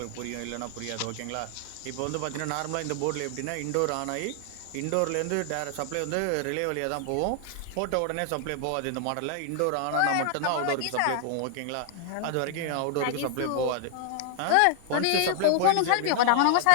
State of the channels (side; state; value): both; different; correlation -0.01